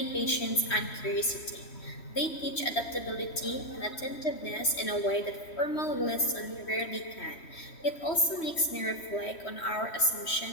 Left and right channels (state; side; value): late; right; 3.1 ms